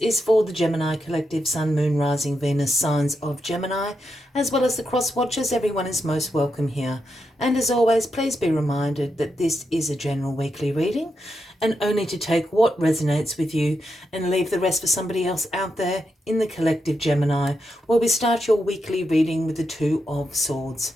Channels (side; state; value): both; normal; correlation 0.85